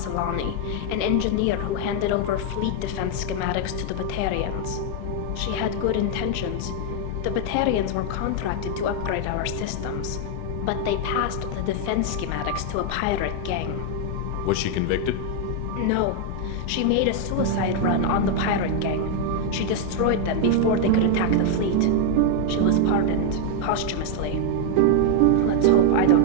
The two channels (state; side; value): different; both; correlation 0.00